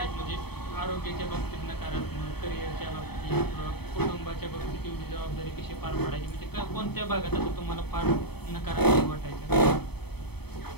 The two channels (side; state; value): right; late; 0.97 ms